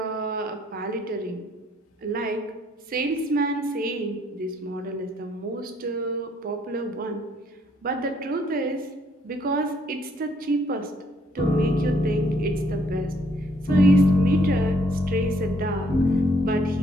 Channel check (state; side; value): normal; both; correlation 0.67